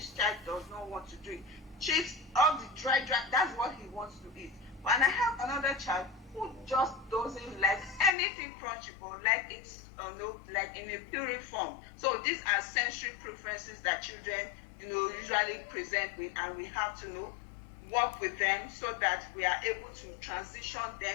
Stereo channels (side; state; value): right; drops out; at 8.1 s